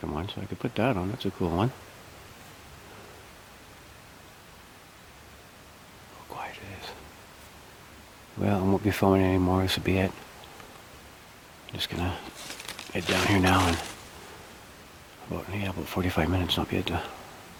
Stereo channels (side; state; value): both; identical; correlation 1.00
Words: one, so I could put that on. That's a cool one. How quiet it is. Well, I won't be filming anymore. This will be it. I'm just gonna head down here now and about 45 minutes and I'll be at the